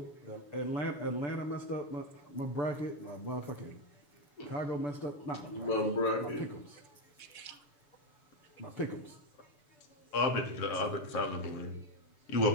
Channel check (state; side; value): late; right; 6.9 ms